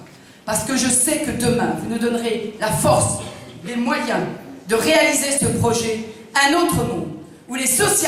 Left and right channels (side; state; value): both; identical; correlation 1.00